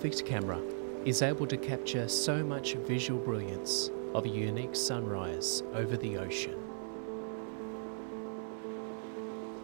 camera is able to capture so much visual brilliance of a unique sunrise over the ocean.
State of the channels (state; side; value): silent; left; 53 dB below the other